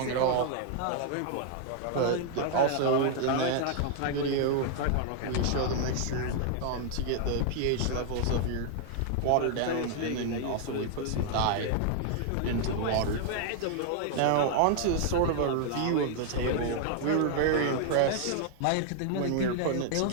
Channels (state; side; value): different; both; correlation 0.00